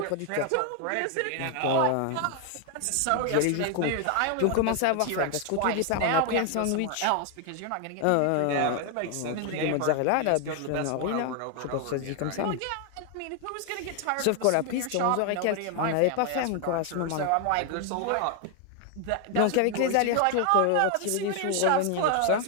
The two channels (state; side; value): different; both; correlation 0.00